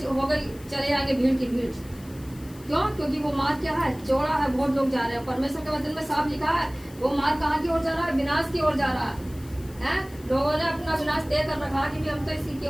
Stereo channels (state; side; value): noise; left; hiss, 22 dB below the sound